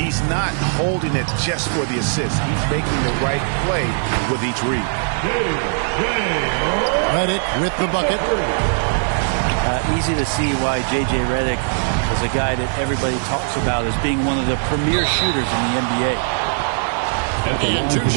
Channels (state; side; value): silent; left; digital silence